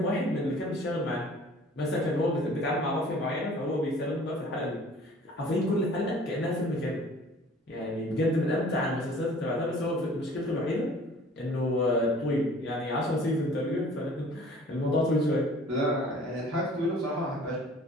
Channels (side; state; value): both; normal; correlation 0.50